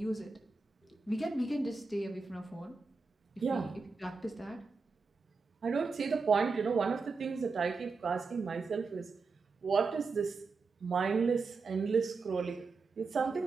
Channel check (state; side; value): quieter; left; 4.3 dB